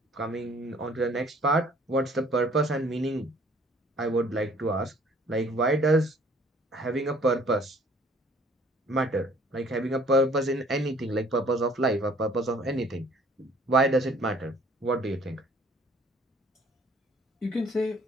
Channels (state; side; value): normal; both; correlation 0.57